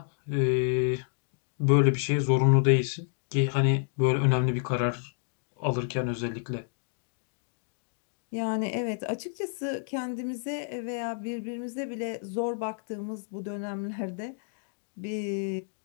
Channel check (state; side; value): silent; right; digital silence